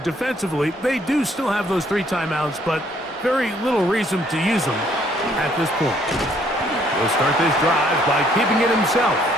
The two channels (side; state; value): both; normal; correlation 0.65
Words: they do still have those 3 timeouts, but very little reason to use them at this point. He'll start this drive by keeping it himself.